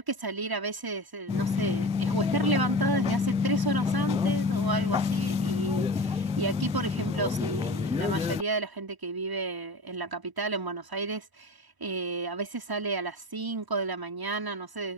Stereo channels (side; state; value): left; late; 1.0 ms